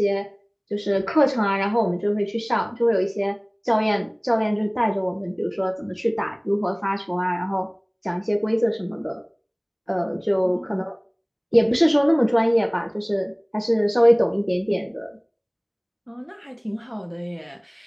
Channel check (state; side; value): identical; both; correlation 1.00